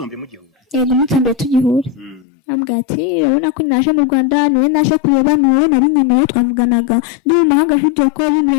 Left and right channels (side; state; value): right; drops out; at 2.2 s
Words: wa mbere mugihura? Yego, umunsi wa mbere tugihura. Ambwira ati urabona ko naje mu Rwanda, niwe naje kureba, niwe nari nkeneye, twavuganaga ndi mu mahanga video call